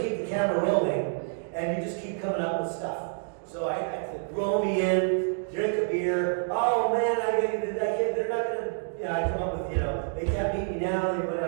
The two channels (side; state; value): left; silent; digital silence